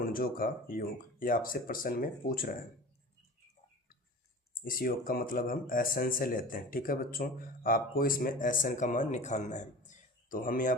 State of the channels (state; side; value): normal; both; correlation 0.37